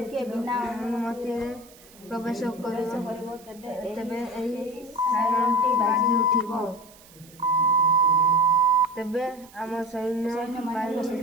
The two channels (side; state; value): right; noise; hiss, 24 dB below the sound